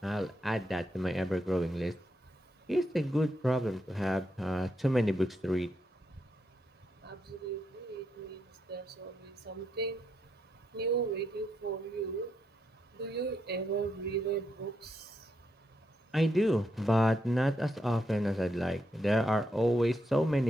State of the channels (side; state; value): both; normal; correlation 0.81